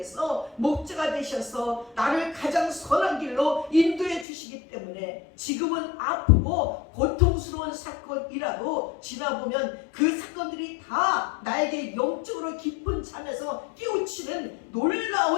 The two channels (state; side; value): drops out; right; at 4.2 s